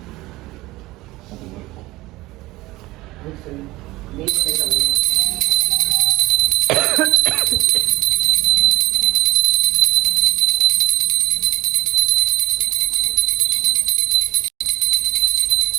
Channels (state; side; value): quieter; left; 19.1 dB